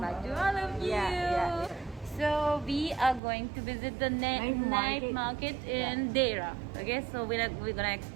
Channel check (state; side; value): drops out; left; at 3.2 s